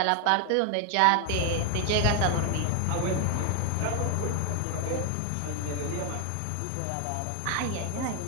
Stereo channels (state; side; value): different; both; correlation 0.01